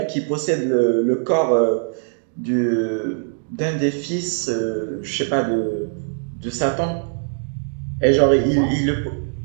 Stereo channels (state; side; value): silent; left; digital silence